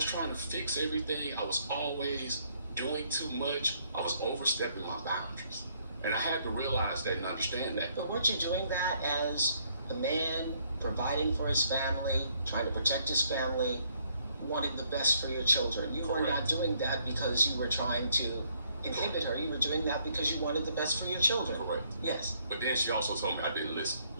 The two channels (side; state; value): both; inverted; correlation -0.68